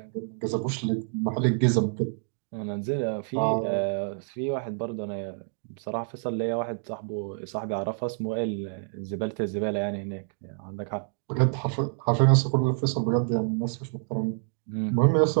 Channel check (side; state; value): left; silent; 60 dB below the other